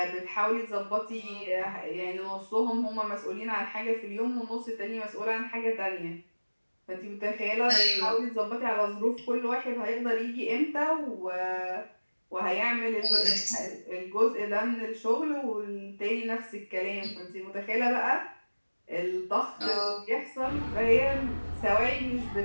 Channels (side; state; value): both; inverted; correlation -1.00